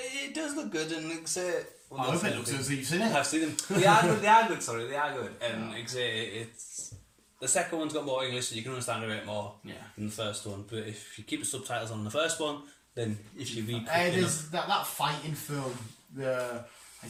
It does look good, and like I say. Well, I hope it looks as you've seen it. I've seen them. They are good. They are good. Sorry, they are good. And like I say, it's the second one's got more English, so you can understand a bit more than the first one. But if you keep the subtitles on the first one, then if you read, there's that fighting film.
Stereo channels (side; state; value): both; identical; correlation 1.00